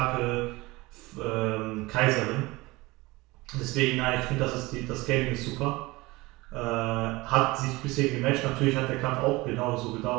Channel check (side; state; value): left; quieter; 21.7 dB